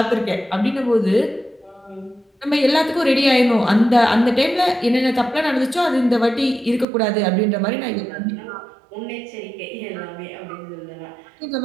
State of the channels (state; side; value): drops out; left; at 6.9 s